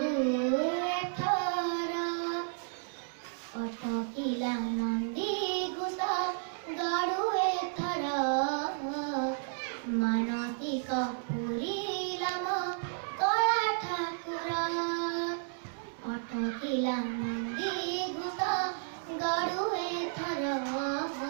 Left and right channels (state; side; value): silent; left; digital silence